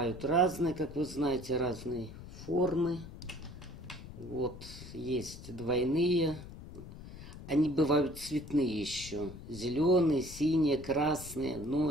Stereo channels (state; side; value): noise; left; rumble, 14 dB below the sound